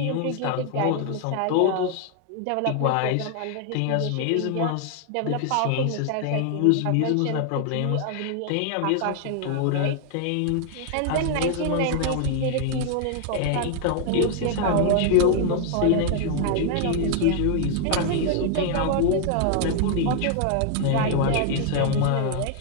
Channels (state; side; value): different; both; correlation 0.00